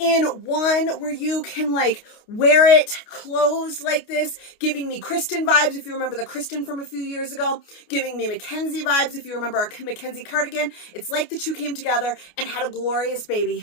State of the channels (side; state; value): right; late; 29 ms